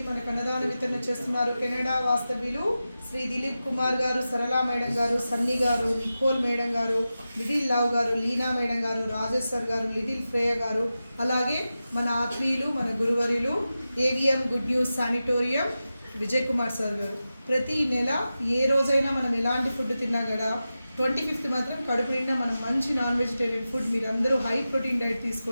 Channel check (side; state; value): both; inverted; correlation -0.93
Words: మనకు అన్నదాన వితరణ చేస్తున్నారు కెనడా వాస్తవ్యులు శ్రీ దిలీప్ కుమార్ గారు, సరళా మేడం గారు, సన్నీ గారు, నికోల్ మేడం గారు, లిటిల్ లవ్ గారు, లీనా మేడం గారు, రాజేష్ సార్ గారు, లిటిల్ ఫ్రేయ గారు, అలాగే మన ఆత్మీయులు, మన గురువరులు AVM good news sanatorium Vijay Kumar sir గారు. ప్రతి నెల ఏ రోజైనా మనం ఎలాంటి ఫుడ్ తిన్నా కూడా 25th మాత్రం కడుపు నిండా మనం మంచి నాన్ వెజిటేరియన్ ఫుడ్ మీరందరూ హై ప్రోటీన్ డైట్